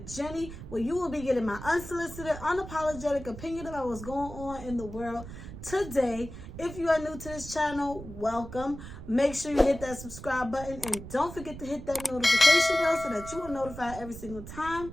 Jenny, where you will be getting my unsolicited, unapologetic opinion about what's going on in the world today. If you are new to this channel, welcome. Make sure you hit that subscribe button and don't forget to hit that notification bell so that you are notified every single time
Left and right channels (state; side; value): noise; right; rumble, 12 dB below the sound